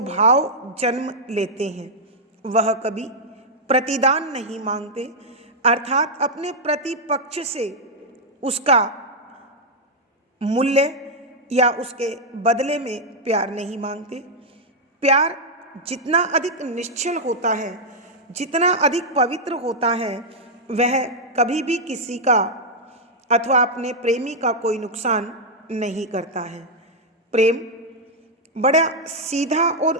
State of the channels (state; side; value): normal; both; correlation -0.03